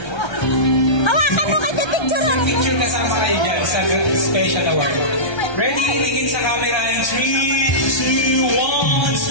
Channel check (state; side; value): late; right; 1.3 ms